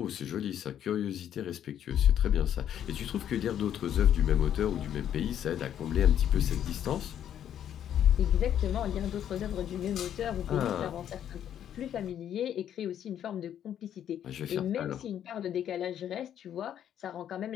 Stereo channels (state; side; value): quieter; right; 10.1 dB